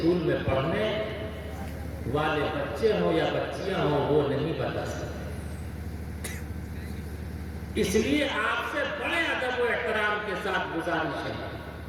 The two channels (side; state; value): both; identical; correlation 1.00